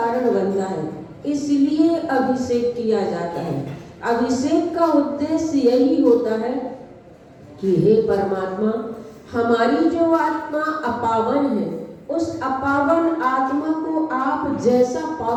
बनता है, इसलिए अभिषेक किया जाता है। अभिषेक का उद्देश्य यही होता है कि हे परमात्मा, हमारी जो आत्मा अपावन है, उस अपावन आत्मा को आप जैसा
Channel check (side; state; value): both; identical; correlation 1.00